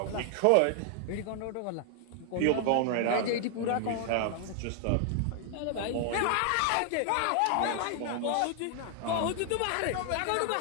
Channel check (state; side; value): different; both; correlation 0.00